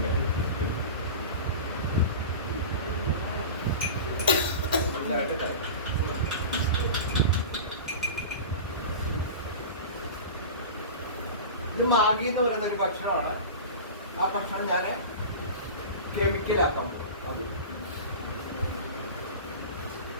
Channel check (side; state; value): both; inverted; correlation -0.31